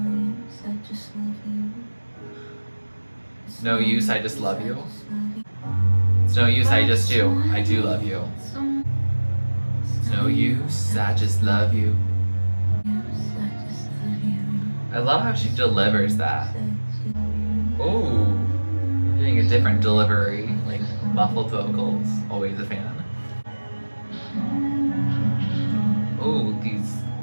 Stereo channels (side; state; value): both; inverted; correlation -1.00